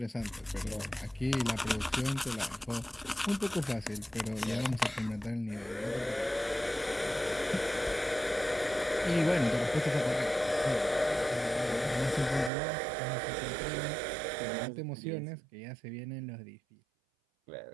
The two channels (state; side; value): drops out; left; at 12.5 s